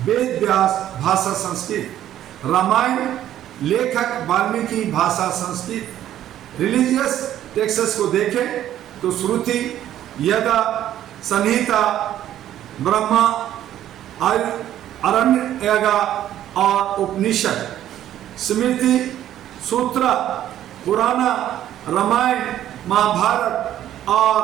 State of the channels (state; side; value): quieter; left; 11.9 dB